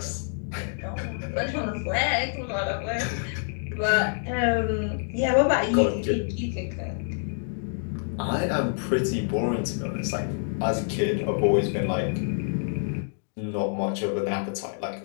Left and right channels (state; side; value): silent; right; digital silence